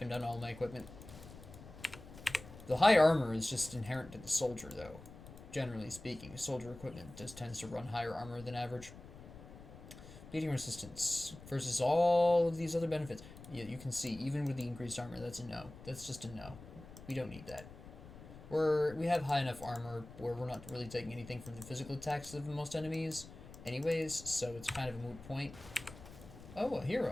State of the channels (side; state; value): left; noise; rumble, 16 dB below the sound